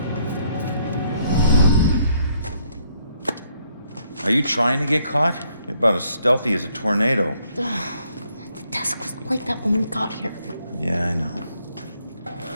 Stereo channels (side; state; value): both; inverted; correlation -0.70